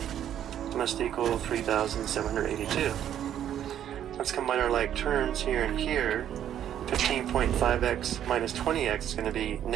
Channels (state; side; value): quieter; left; 10.4 dB